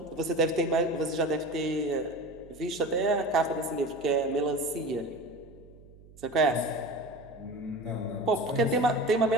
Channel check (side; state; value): right; noise; hum, 22 dB below the sound